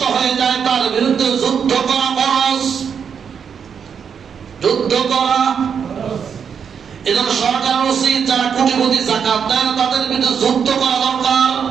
হয়ে যায়, তার বিরুদ্ধে যুদ্ধ করা ফরজ। যুদ্ধ করা, এজন্য সরকার উচিত যারা কোটিপতি যাকাত দেয় না, তাদের বিরুদ্ধে যুদ্ধ করা দরকার।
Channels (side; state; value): left; quieter; 7.1 dB